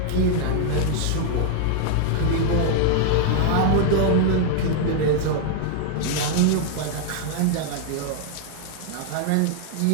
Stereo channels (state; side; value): different; both; correlation 0.00